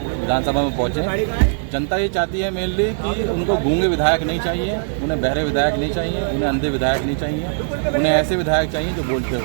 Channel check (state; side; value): silent; left; digital silence